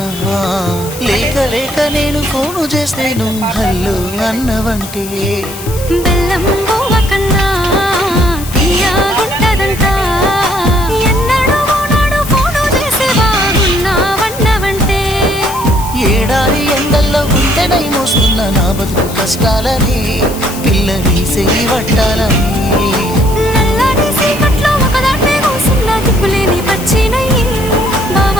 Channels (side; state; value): left; noise; hiss, 13 dB below the sound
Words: లేక లేక నేను ఫోను చేస్తే నువ్వు హల్లో అన్నవంటే బెల్లం బొవ్వ కన్నా తీయగుంటదంట ఎన్నడూ నాడు ఫోను చేసి బాగున్నావన్నవంటే ఏడాది ఎండల్లో గుంటెనై మోస్తున్న నా బతుకు కష్టాలని పిల్లని చేయి పట్టాలని నల్లని సీకట్లో ఒకదాన్నే కూసున్న దిక్కులేని పచ్చినయ్యి బావ